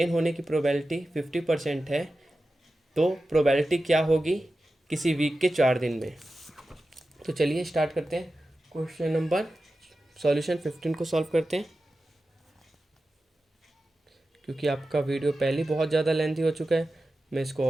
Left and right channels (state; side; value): normal; both; correlation 0.93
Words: होने की प्रोबेबिलिटी 50% है तो प्रोबेबिलिटी क्या होगी किसी वीक के 4 दिन में। तो चलिए स्टार्ट करते हैं। क्वेश्चन नंबर सॉल्यूशन 15 को सॉल्व करते हैं, क्योंकि आपका वीडियो पहले बहुत ज़्यादा लेंथी हो चुका है, मैं इसको